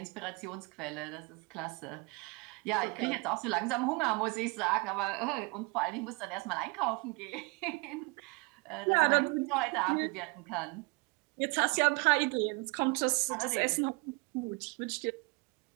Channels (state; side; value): quieter; left; 29.2 dB